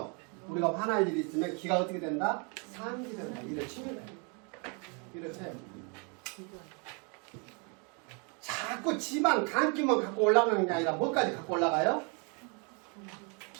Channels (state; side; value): quieter; left; 35.1 dB